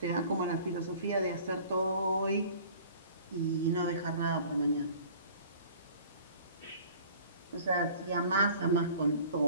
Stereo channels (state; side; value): inverted; both; correlation -0.48